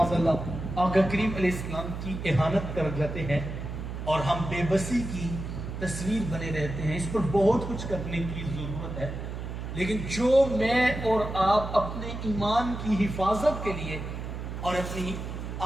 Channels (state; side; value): noise; right; hum, 7 dB below the sound